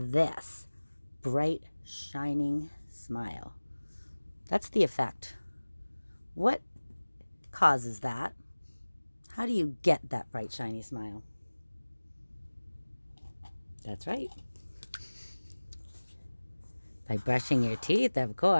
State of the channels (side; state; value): both; inverted; correlation -1.00